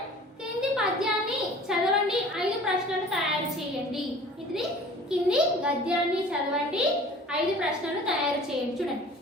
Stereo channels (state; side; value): normal; both; correlation 0.45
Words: కింది పద్యాన్ని చదవండి, 5 ప్రశ్నలు తయారు చేయండి. ఇది కింది గద్యాన్ని చదవండి, 5 ప్రశ్నలు తయారు చేయండి. చూడండి,